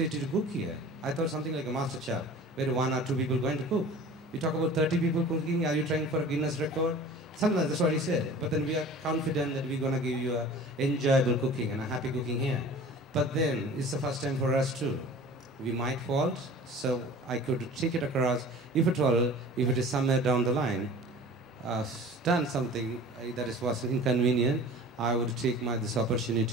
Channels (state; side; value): normal; both; correlation 0.42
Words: to cook here. I thought something like a master chef, where 1 or 2 people going to cook. You talk about 30 people cooking, are you trying for a Guinness record? Something like that's what he said. But then we are confident that we're going to give you a enjoyable cooking and a happy cooking here. But then it's the first time for us too. We might fault, so I could take it across. If at all, if it is somewhere down the line, done something that was inconvenient, I would take this